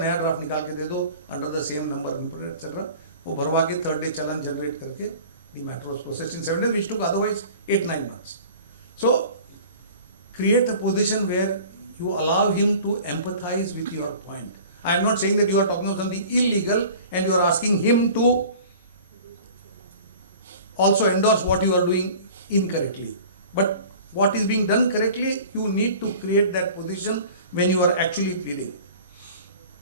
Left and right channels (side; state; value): both; inverted; correlation -0.43